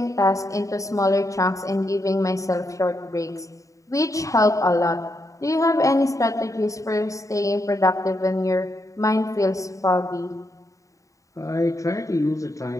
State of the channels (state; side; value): late; right; 0.16 ms